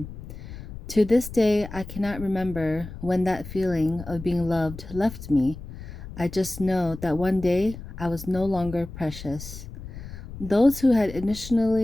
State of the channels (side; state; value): left; noise; rumble, 12 dB below the sound